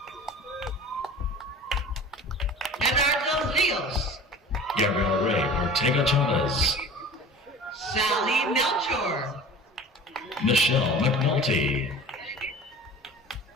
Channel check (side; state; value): both; normal; correlation 0.40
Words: Eduardo Rios. Gabriel Ray Ortega Chavez. Sally Melchor. Michelle McNulty.